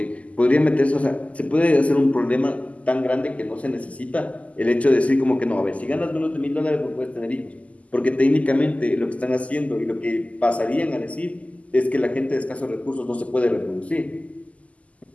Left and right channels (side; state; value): right; late; 0.068 ms